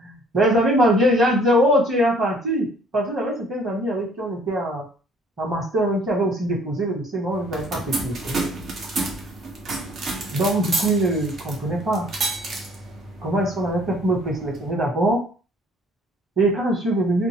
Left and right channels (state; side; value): normal; both; correlation 0.57